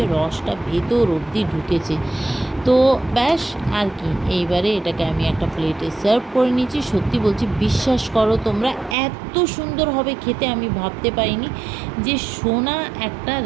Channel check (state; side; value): drops out; left; at 9.0 s